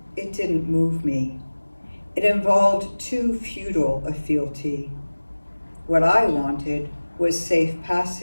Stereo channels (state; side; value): inverted; both; correlation -1.00